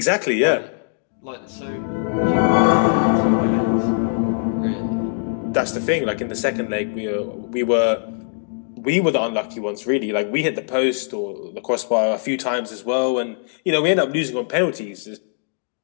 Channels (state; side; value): silent; right; digital silence